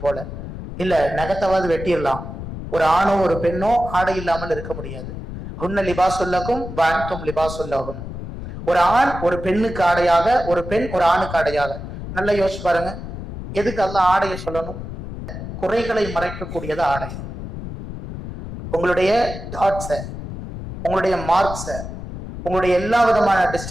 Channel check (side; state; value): left; noise; rumble, 9 dB below the sound